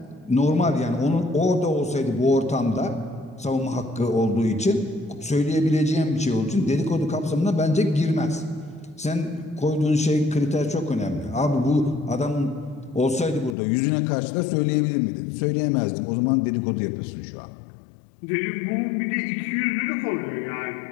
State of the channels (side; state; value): right; drops out; at 13.6 s